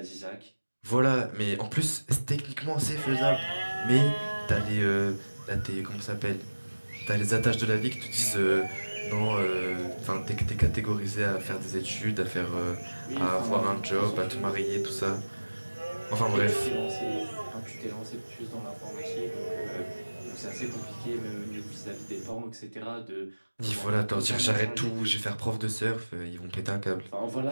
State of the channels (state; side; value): inverted; both; correlation -1.00